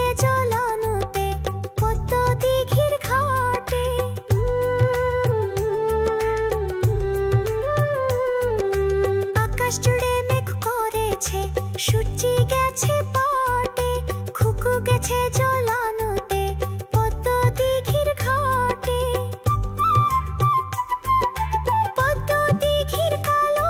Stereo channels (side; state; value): both; identical; correlation 1.00